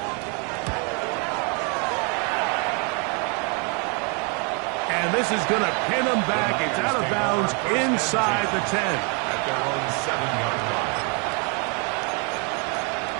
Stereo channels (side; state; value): left; quieter; 35.3 dB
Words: And this is going to pin him back. It's out of bounds inside the 10. At their own 7-yard line.